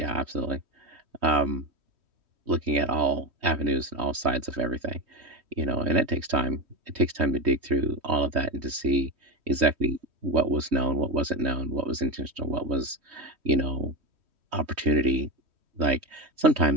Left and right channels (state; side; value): late; left; 3.1 ms